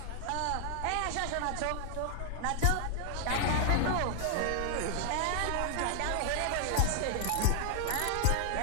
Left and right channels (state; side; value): different; both; correlation 0.00